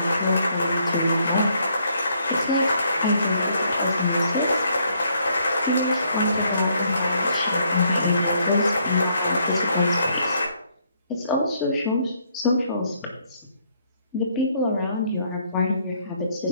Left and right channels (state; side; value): inverted; both; correlation -0.70